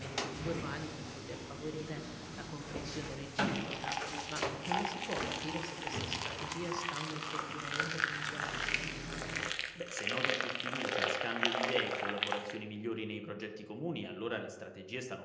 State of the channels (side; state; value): both; identical; correlation 1.00